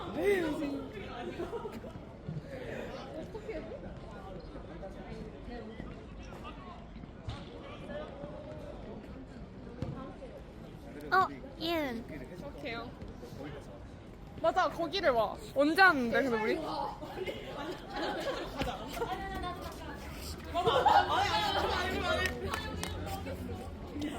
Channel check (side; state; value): both; identical; correlation 1.00